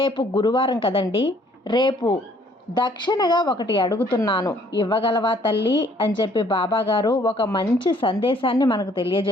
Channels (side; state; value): both; normal; correlation 0.61